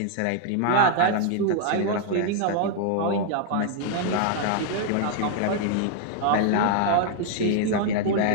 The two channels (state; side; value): different; both; correlation 0.00